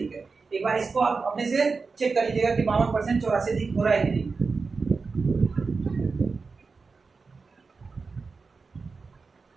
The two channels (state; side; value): quieter; left; 4.5 dB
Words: है। एक बार इसको आप अपने से चेक कर लीजिएगा कि 52% 84 अधिक हो रहा है कि नहीं।